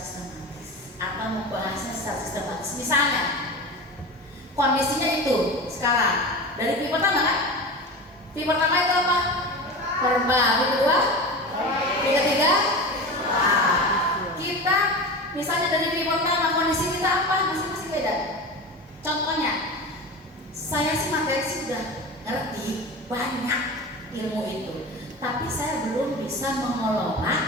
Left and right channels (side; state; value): both; normal; correlation 0.29